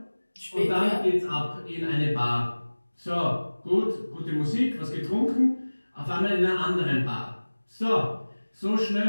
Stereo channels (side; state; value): both; inverted; correlation -1.00